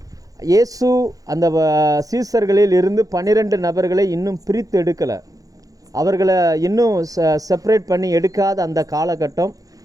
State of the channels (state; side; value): late; left; 0.17 ms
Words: இயேசு அந்த சீசர்களில் இருந்து 12 நபர்களை இன்னும் பிரித்து எடுக்கலை. அவர்களை இன்னும் செப்பரேட் பண்ணி எடுக்காத அந்த காலகட்டம்.